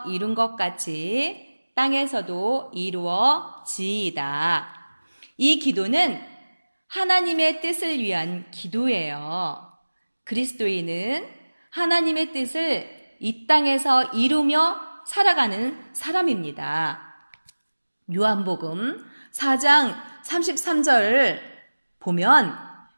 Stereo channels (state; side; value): inverted; both; correlation -1.00